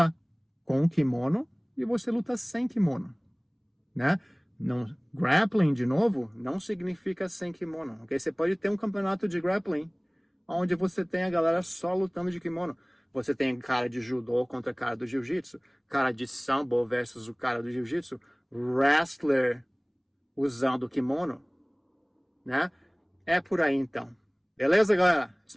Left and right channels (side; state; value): both; identical; correlation 1.00